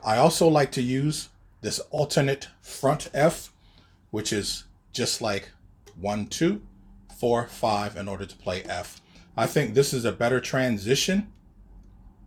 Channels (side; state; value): both; identical; correlation 1.00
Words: I also like to use this alternate front F, which is just like 1, 2, 4, 5 in order to play F. I think this is a better transition